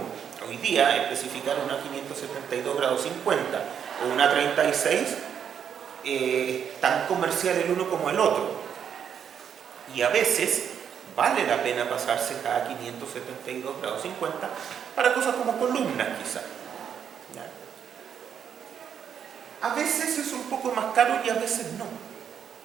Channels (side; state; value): left; quieter; 8.1 dB